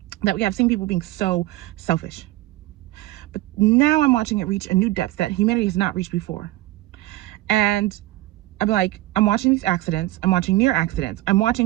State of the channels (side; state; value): left; quieter; 17.2 dB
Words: that we have seen people being so selfish. But now I'm watching it reach a new depth that humanity has not reached before. And I'm like, I'm watching these accidents. I'm watching near accidents. I'm